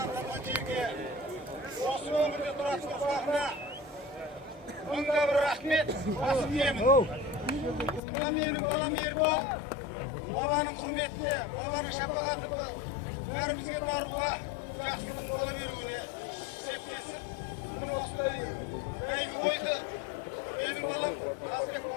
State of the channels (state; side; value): drops out; right; at 8.0 s